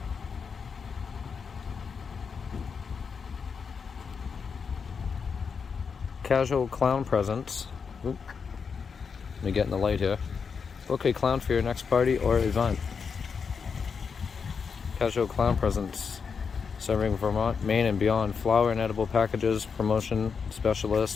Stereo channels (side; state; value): right; quieter; 5.9 dB